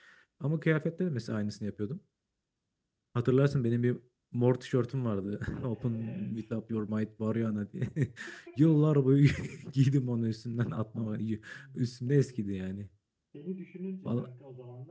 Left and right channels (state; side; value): identical; both; correlation 1.00